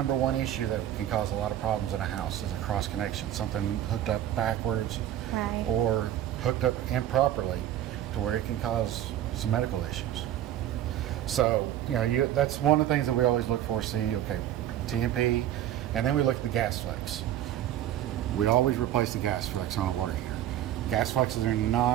one issue that can cause a lot of problems in a house, is a cross connection, something hooked up backwards Right. or hooked up improperly to where it can cause some medical issues. So, that's one of the things that we always look for, see, okay, TMP, and then we look at the gas flex. We always replace the gas flex on a water heater. Gas flexes are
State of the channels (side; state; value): left; quieter; 12.1 dB